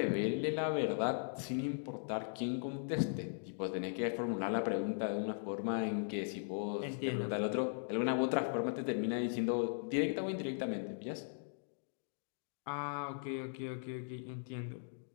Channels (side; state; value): right; silent; digital silence